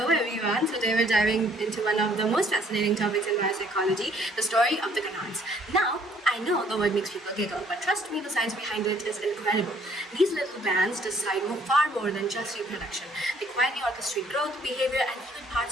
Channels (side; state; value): both; normal; correlation 0.61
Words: everyone. Today we're diving into one of the most fascinating topics in biopsychology, the story of the gonads. Now, I know the word makes people giggle, but trust me, the science behind it is incredible. These little glands decide far more than just reproduction. They quietly orchestrate growth, behavior, and even